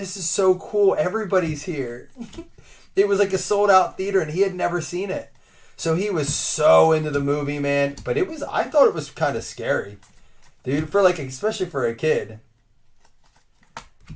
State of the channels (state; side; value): identical; both; correlation 1.00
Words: is so cool. Everybody's here. It was like a sold out theater and he had never seen it. So he was so into the movie, man. But I thought it was kind of scary. Dude, especially for a kid.